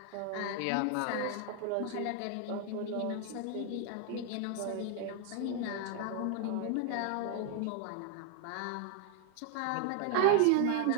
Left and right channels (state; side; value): different; both; correlation 0.00